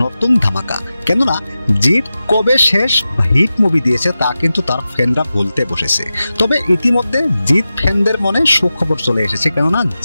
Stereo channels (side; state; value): both; inverted; correlation -0.93